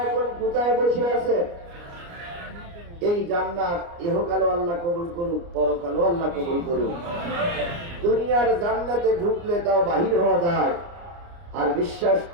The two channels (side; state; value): left; late; 29 ms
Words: এখন কোথায় বসে আছেন? এই জান্নাত ইহকালও আল্লাহ কবুল করুক, পরকালও আল্লাহ কবুল করুক। দুনিয়ার জান্নাতে ঢুকলে তাও বাহির হওয়া যায়। আর বিশ্বাস